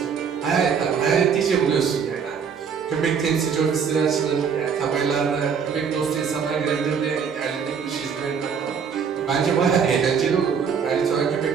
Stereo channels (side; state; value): left; quieter; 6.6 dB